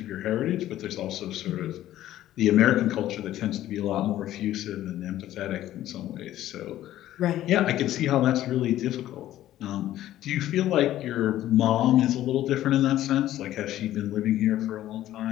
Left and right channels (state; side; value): quieter; right; 13.5 dB